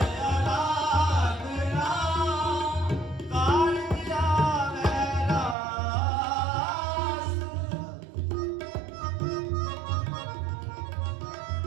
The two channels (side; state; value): left; drops out; at 5.6 s